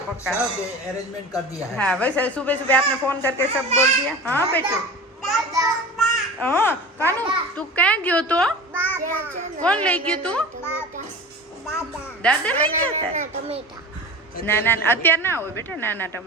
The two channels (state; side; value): normal; both; correlation 0.35